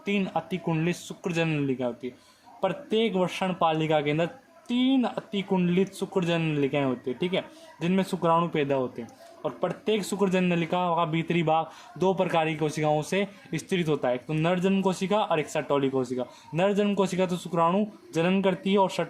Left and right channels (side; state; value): both; identical; correlation 1.00